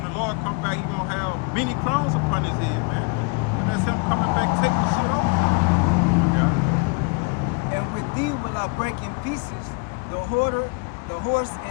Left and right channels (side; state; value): right; quieter; 32.9 dB